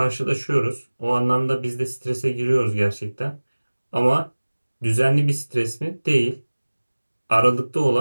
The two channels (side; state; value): both; inverted; correlation -1.00